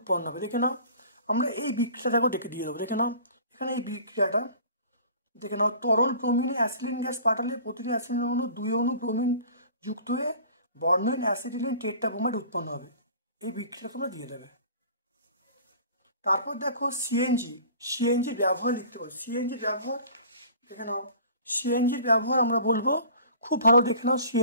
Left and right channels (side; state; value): both; inverted; correlation -0.46